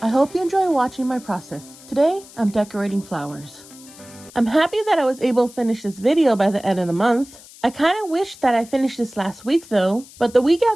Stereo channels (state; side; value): noise; left; hiss, 21 dB below the sound